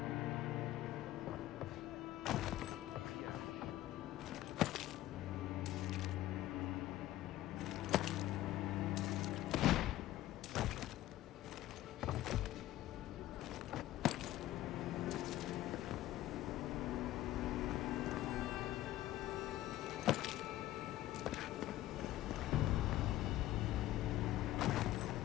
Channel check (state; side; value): quieter; right; 14.8 dB